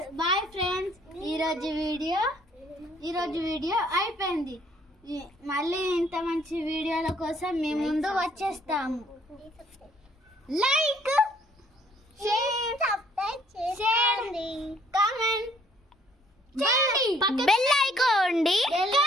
Bye friends. ఈరోజు వీడియో అయిపోయింది. మళ్ళీ ఇంత మంచి వీడియోల కోసం మేము ముందు వచ్చేస్తాము. Like, share, comment, bell icon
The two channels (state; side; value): normal; both; correlation 0.63